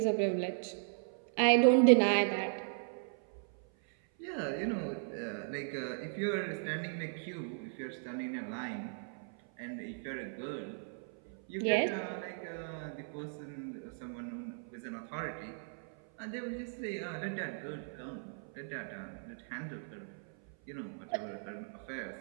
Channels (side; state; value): left; silent; 53 dB below the other